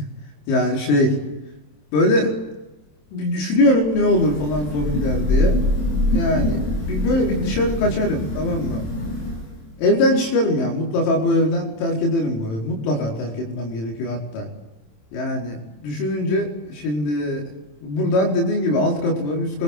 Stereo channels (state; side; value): late; right; 27 ms